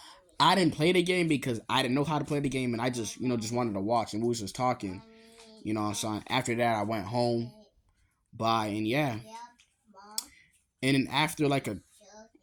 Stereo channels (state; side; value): identical; both; correlation 1.00